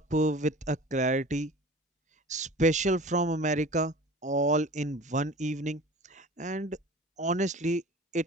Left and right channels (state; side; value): normal; both; correlation 0.40